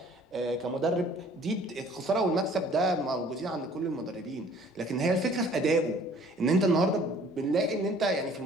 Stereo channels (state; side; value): normal; both; correlation 0.54